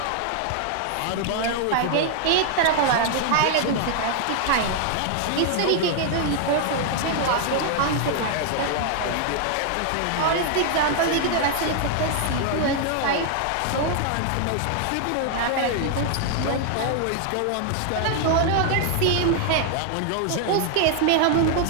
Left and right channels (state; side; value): different; both; correlation 0.00